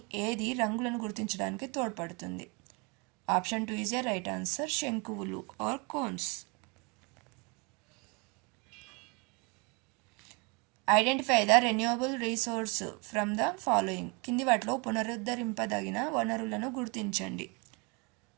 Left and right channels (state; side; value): quieter; left; 29.8 dB